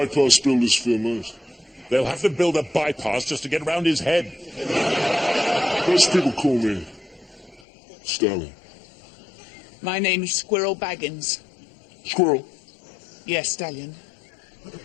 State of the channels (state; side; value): drops out; right; at 7.6 s